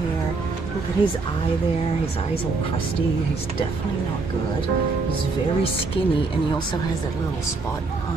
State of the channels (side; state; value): left; quieter; 4.0 dB